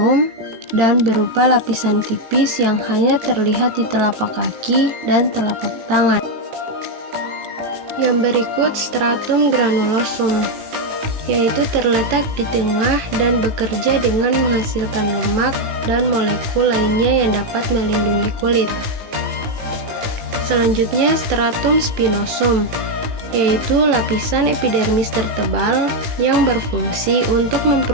dan berupa lapisan tipis yang hanya terlihat di telapak kaki dan telapak tangan. Yang berikut stratum granulosum, yaitu terletak di tengah dan bekerja dengan menghasilkan lemak dan molekul lainnya yang dapat melindungi kulit. Selanjutnya stratum spinosum, yaitu lapisan epidermis tertebal yang berfungsi untuk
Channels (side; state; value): left; late; 19 ms